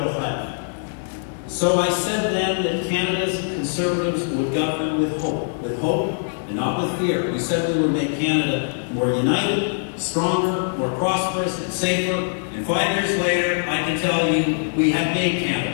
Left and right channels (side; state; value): right; silent; digital silence